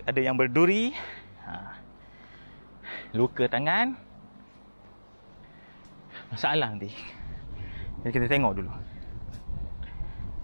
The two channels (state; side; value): inverted; both; correlation -1.00